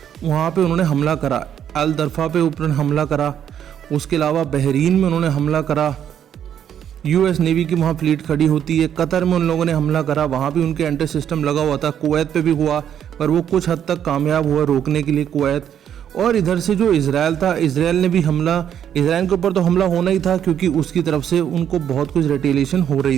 वहाँ पे उन्होंने हमला करा, अल दरफा पे ऊपर हमला करा, उसके अलावा बहरीन में उन्होंने हमला करा, US नेवी की वहाँ फ्लीट खड़ी होती है, कतर में उन लोगों ने हमला करा, वहाँ भी उनके एंटी सिस्टम लगा हुआ था, कुवैत पे भी हुआ पर वो कुछ हद तक कामयाब हुआ रोकने के लिए कुवैत। और इधर से जो इजराइल था, इजराइल ने भी हमला, इजराइल के ऊपर तो हमला होना ही था क्योंकि उसकी तरफ से उनको बहुत कुछ रिटेलिएशन हो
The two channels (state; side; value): quieter; left; 9.4 dB